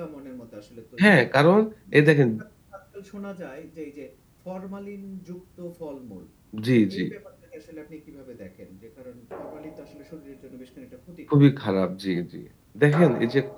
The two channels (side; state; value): both; identical; correlation 1.00